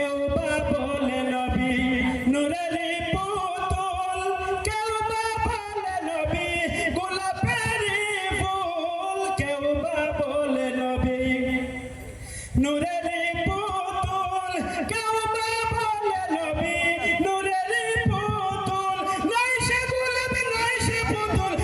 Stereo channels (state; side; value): identical; both; correlation 1.00